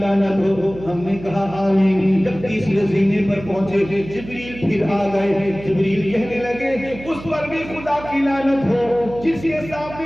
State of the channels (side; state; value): right; noise; hum, 14 dB below the sound